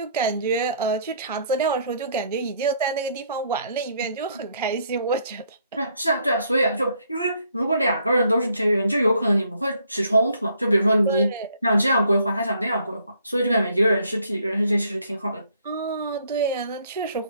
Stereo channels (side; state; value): both; inverted; correlation -0.66